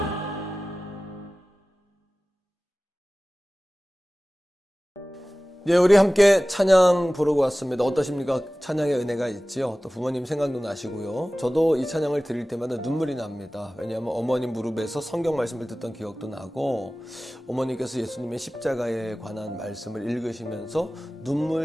예, 우리 함께 찬양 부르고 왔습니다. 어떠십니까? 찬양의 은혜가 있지요. 또 부모님 생각도 나시고요. 저도 이 찬양을 드릴 때마다 눈물이 납니다. 왜냐하면 어머님 무릎에서 성경 말씀을 듣던 기억도 나고 어머니께서 예수님의 십자가에 관한 말씀을 읽으시면서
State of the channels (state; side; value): normal; both; correlation 0.97